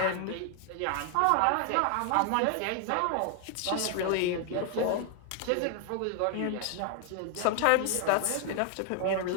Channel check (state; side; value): different; both; correlation 0.00